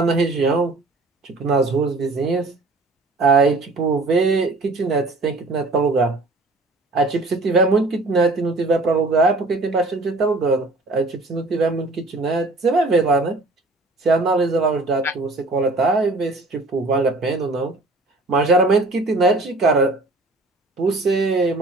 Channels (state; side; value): quieter; left; 3.1 dB